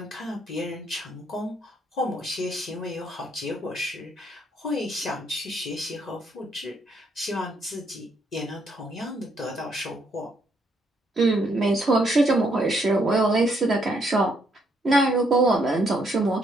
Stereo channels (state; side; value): normal; both; correlation 0.72